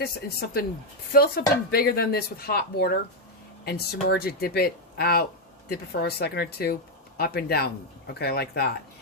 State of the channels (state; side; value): normal; both; correlation 0.02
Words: in something, fill something bigger than this with hot water and submerge it, dip it out, dip it for a second or two, up and down. Okay, like that.